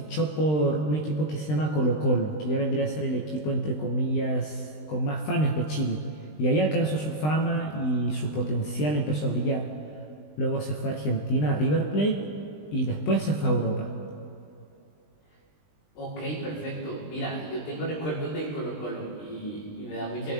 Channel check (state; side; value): late; right; 20 ms